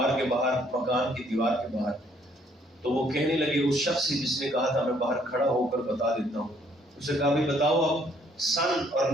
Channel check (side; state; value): both; normal; correlation 0.65